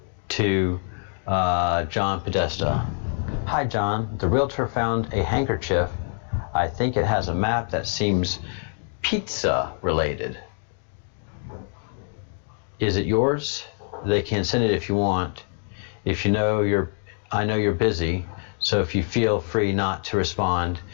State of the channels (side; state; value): right; silent; 62 dB below the other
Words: to John Podesta. Hi John, the realtor found a handkerchief. I think it has a map that seems pizza related. Is it yours? They can send it if you want. If you know I know you're busy, so if you feel free not to respond